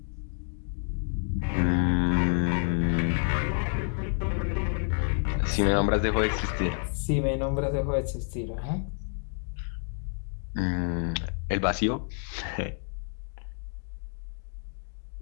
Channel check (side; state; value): right; silent; 59 dB below the other